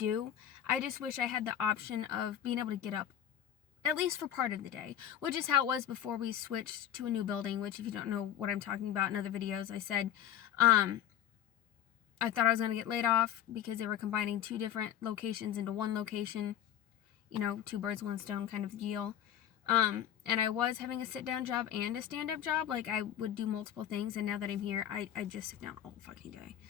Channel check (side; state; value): right; quieter; 10.5 dB